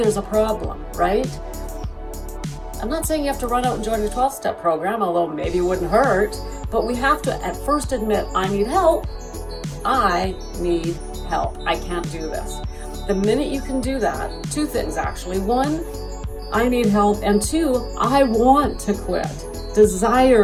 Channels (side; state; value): both; identical; correlation 1.00